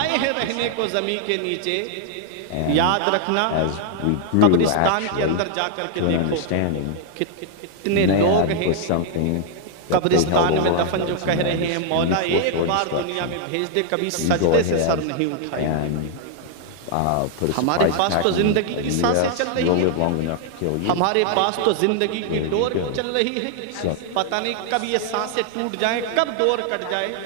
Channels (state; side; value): different; both; correlation 0.00